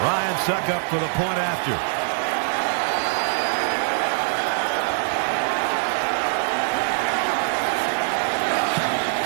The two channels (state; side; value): silent; left; 63 dB below the other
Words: Succop for the point after.